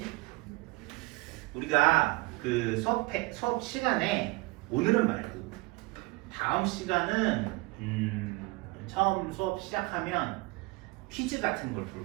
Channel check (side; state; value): left; quieter; 24.0 dB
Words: 우리가 그 수업 시간에 오늘은 말고 다음 시간은 처음 수업 시작하면 퀴즈 같은 걸